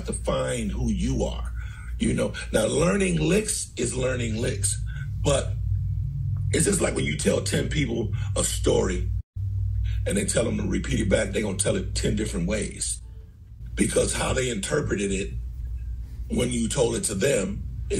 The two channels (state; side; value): identical; both; correlation 1.00